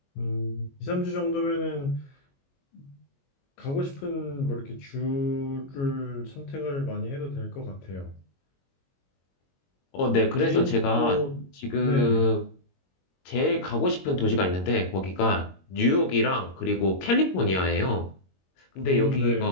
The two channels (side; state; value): right; late; 22 ms